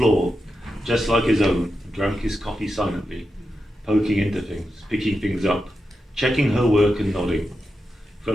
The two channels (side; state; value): both; normal; correlation 0.88